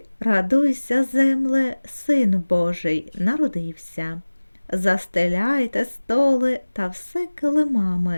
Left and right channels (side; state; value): both; inverted; correlation -1.00